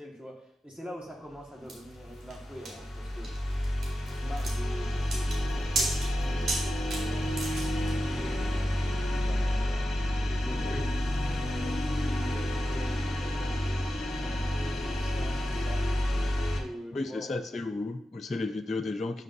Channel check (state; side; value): normal; both; correlation 0.91